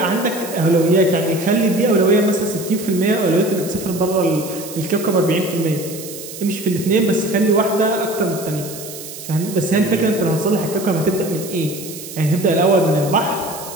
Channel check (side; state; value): right; noise; hiss, 12 dB below the sound